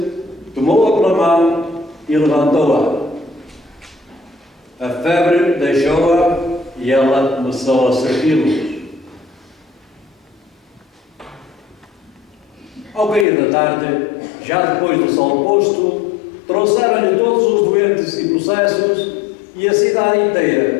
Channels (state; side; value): drops out; right; at 13.2 s